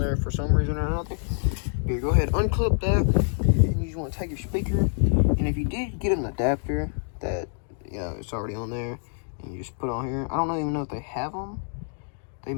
for some reason or another. Here, go ahead, unclip that, and you just want to take your speaker. And if you did get an adapter that, you know, it's already on there, and you just put on here. I don't even know if they have them. They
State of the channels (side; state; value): right; silent; digital silence